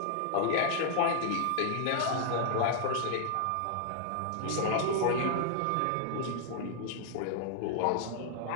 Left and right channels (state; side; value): different; both; correlation 0.00